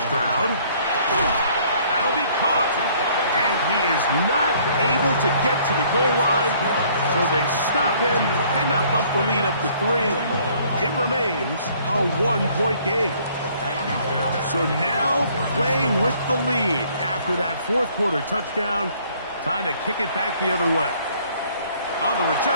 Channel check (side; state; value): both; inverted; correlation -0.60